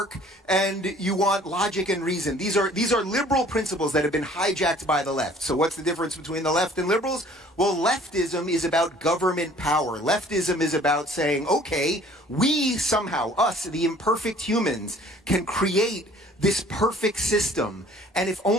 and you want logic and reason. These are liberal principles that have been hijacked by the left. So what's the difference between the left and liberals? Well, leftism is about government power. Leftism is about saying, okay, we somehow, us, the imperfect humans, can create this perfect system. And if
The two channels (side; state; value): both; normal; correlation 0.53